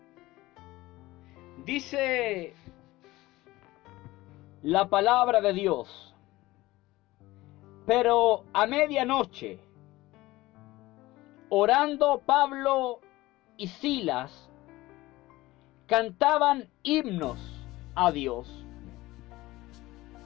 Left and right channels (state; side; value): quieter; right; 18.6 dB